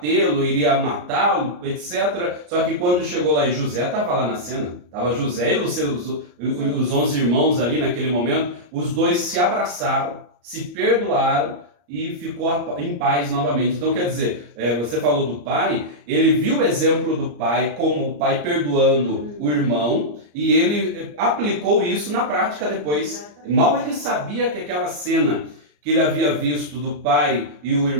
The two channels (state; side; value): late; left; 34 ms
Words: iria matá-lo, etc. Só que quando chegou lá e José estava lá na cena, estava José e os 11 irmãos ali naquele momento, os dois se abraçaram, se perdoaram, e ficou em paz novamente. Então quer dizer, você falou do pai, ele viu o exemplo do pai, como o pai perdoando o irmão, e ele aplicou isso na prática depois. Mal ele sabia que aquela cena que ele havia visto do pai e o